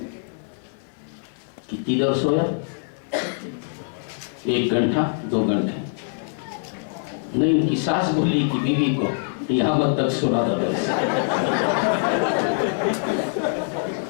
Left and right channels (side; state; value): right; silent; digital silence